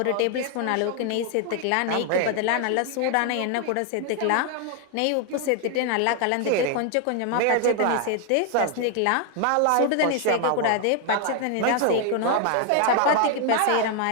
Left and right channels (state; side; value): different; both; correlation 0.00